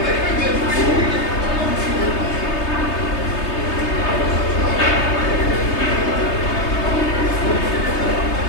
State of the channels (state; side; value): late; right; 3.3 ms